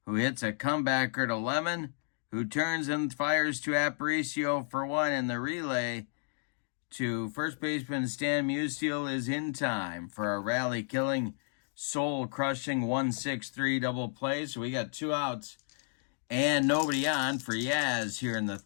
who hits a comebacker to Lemon, who turns and fires to Aparicio for 1 in the relay to first baseman Stan Musial is in time for a rally-killing, soul-crushing 1-6-3 double play. So we got 2 outs and nobody on for Yaz here in the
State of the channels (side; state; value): right; silent; digital silence